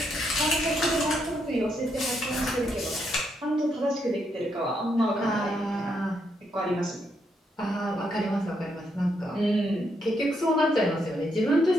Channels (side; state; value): both; normal; correlation 0.78